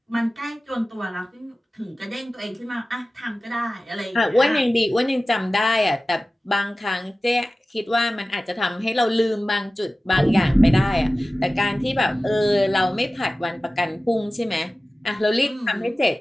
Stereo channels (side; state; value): both; normal; correlation 0.96